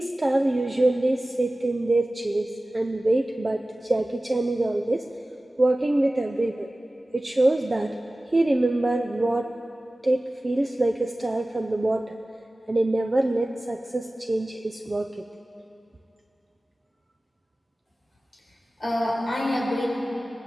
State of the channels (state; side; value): normal; both; correlation 0.97